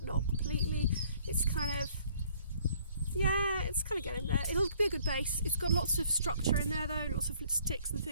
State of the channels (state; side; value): inverted; both; correlation -0.60